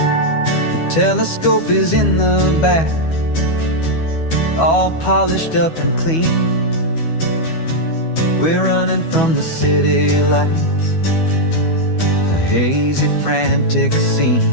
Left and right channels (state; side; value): late; right; 12 ms